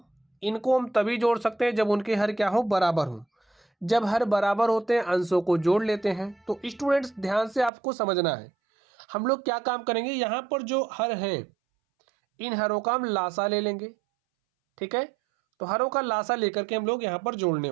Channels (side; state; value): left; drops out; at 7.7 s